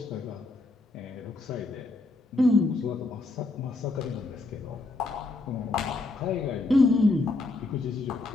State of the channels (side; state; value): right; quieter; 3.2 dB